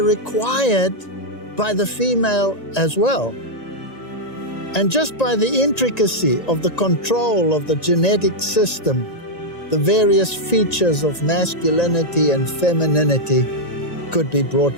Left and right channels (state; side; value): late; right; 1.9 ms